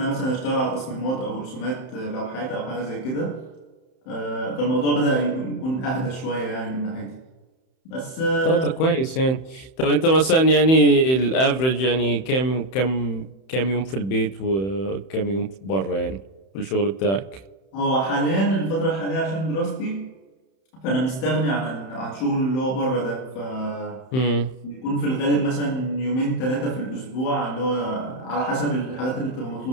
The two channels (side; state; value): right; late; 31 ms